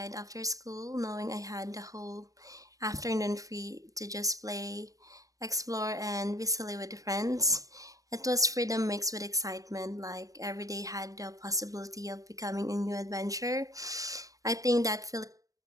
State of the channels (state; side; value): late; left; 0.16 ms